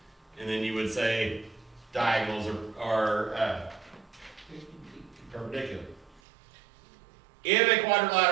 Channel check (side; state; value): left; drops out; at 6.2 s